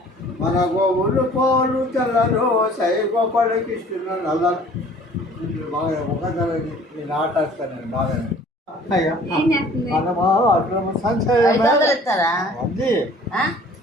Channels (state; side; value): normal; both; correlation 0.51